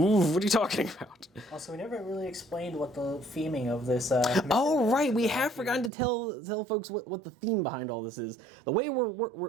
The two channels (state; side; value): drops out; left; at 5.9 s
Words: What are you talking about? Also, we never really explained what the theming of this. Oh right, we have forgotten to tell folks what the theme behind all this is. The way